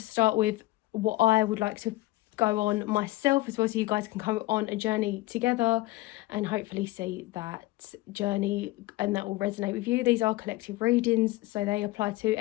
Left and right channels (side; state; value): right; quieter; 18.8 dB